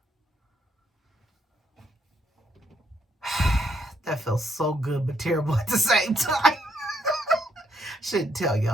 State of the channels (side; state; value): both; normal; correlation 0.73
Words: That feels so good but terrible at the same time. Shouldn't tell